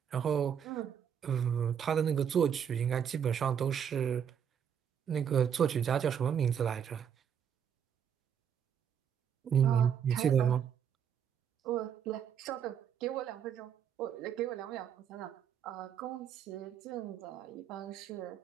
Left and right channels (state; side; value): quieter; left; 8.3 dB